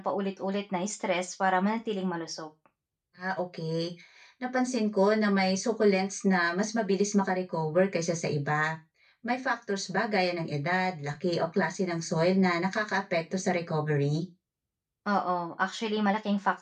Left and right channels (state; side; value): identical; both; correlation 1.00